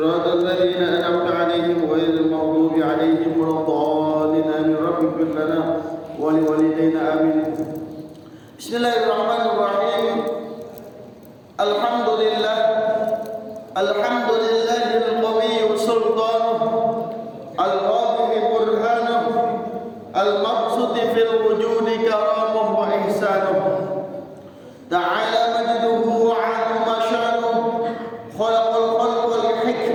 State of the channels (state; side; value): identical; both; correlation 1.00